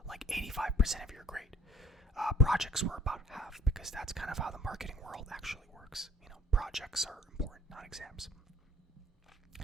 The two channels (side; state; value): both; normal; correlation 0.53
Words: like 85% of your grade. Projects were about half, because that's kind of how the marketing world actually works. Projects are important, not exams.